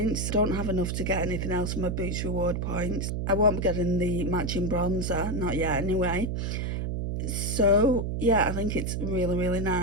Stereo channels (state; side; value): noise; right; hum, 1 dB below the sound